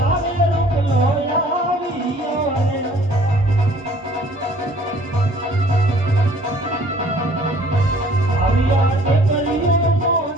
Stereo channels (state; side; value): normal; both; correlation 0.55